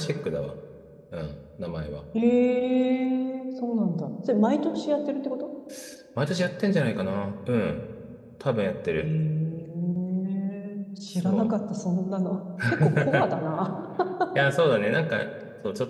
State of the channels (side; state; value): both; identical; correlation 1.00